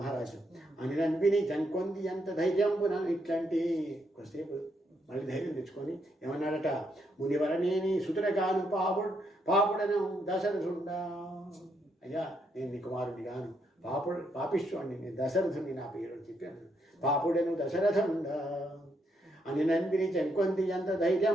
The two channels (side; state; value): both; normal; correlation 0.77